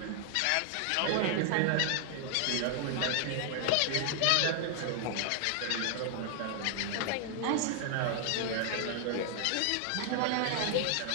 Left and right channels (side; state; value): both; different; correlation 0.00